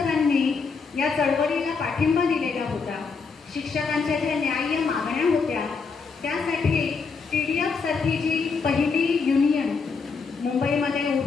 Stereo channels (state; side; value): quieter; right; 5.0 dB